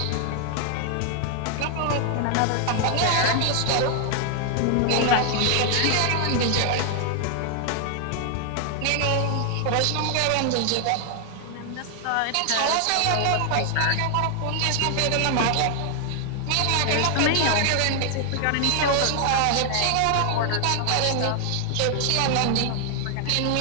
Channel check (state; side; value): different; both; correlation 0.00